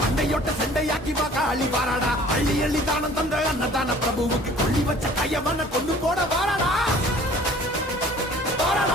மண்டையொட்ட செண்டையாக்கி காளி வாராடா. அள்ளி அள்ளி தானம் தந்த அன்னதான பிரபுவுக்கு கொள்ளி வச்ச கையவன கொண்டு போட வாராடா.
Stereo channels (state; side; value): normal; both; correlation 0.51